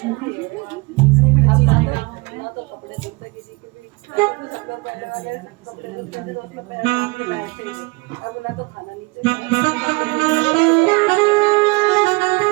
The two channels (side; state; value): left; quieter; 26.4 dB